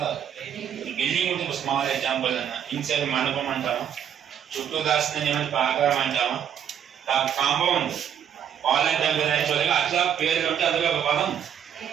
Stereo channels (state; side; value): quieter; left; 9.0 dB